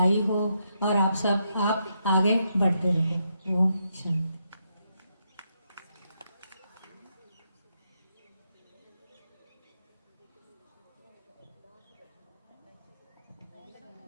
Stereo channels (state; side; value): inverted; both; correlation -0.80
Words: हो और आप आगे बढ़ते रहे। ओम शांति।